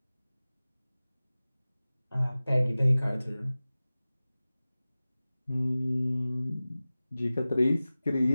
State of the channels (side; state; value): both; inverted; correlation -0.97